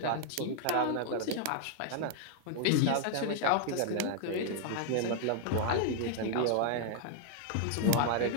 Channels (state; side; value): different; both; correlation 0.00